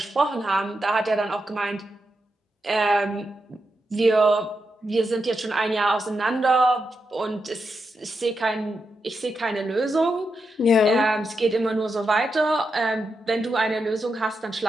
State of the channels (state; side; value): normal; both; correlation 0.86